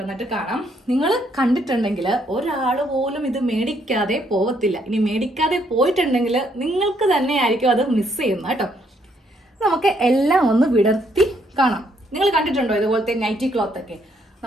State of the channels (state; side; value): normal; both; correlation 0.71